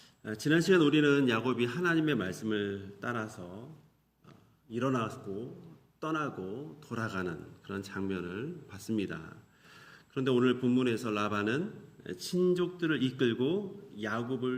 지난 시간 우리는 야곱이 하나님의 말씀을 따라서 일어나고 떠나고 돌아가는 그런 장면을 봤습니다. 그런데 오늘 본문에서 라반은 친족들을 이끌고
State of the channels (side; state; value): both; identical; correlation 1.00